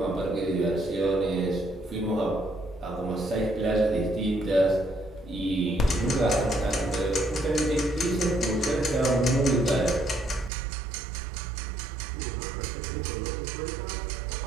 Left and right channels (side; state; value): left; drops out; at 10.5 s